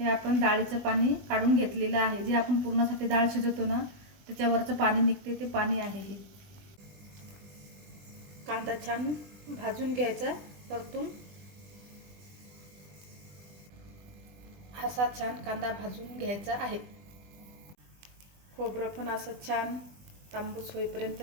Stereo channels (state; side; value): late; left; 20 ms